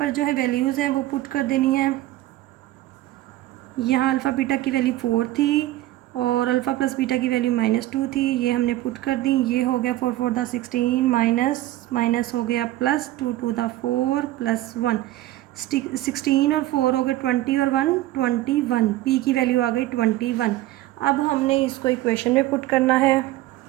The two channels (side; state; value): left; quieter; 15.5 dB